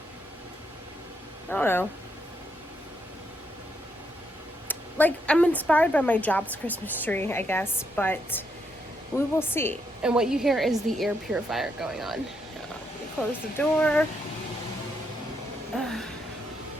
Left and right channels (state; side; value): normal; both; correlation 0.78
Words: I don't know. Like, I'm inspired by my job's Christmas tree, I guess, but we will see. And what you hear is the air purifier going on. Let me close the door.